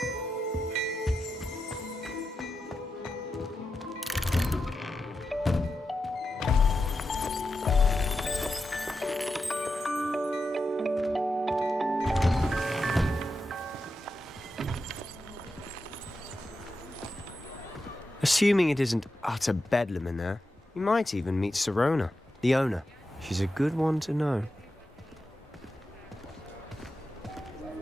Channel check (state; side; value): normal; both; correlation 0.89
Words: Assuming it isn't utter bedlam in there, you might even meet Sirona, the owner. She's a good one to know.